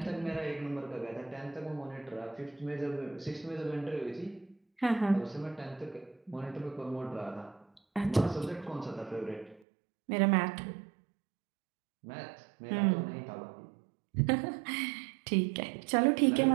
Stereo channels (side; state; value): left; drops out; at 9.6 s